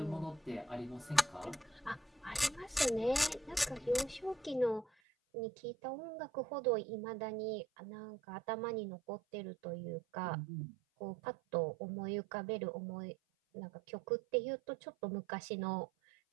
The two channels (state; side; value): drops out; left; at 4.9 s